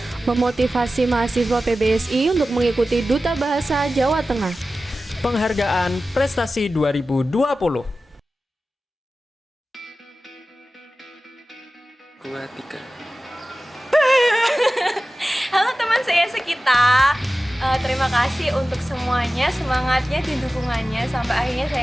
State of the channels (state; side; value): normal; both; correlation 0.95